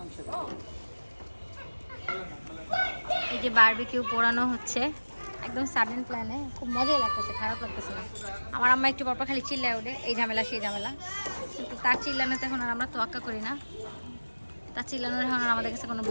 এই যে বারবিকিউ পোড়ানো হচ্ছে একদম সাডেন প্ল্যানে। খুব মজাই লাগতেছে, খারাপ লাগতেছে না। আমার আম্মা একটু পরপর খালি চিল্লায় ওঠে, এই ঝামেলা সেই ঝামেলা। কিন্তু তার চিল্লানোতে এখন আর আমরা তোয়াক্কা করি না। তার চিল্লানোর এখন আর আমাদের কাছে কোনো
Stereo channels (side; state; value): both; inverted; correlation -1.00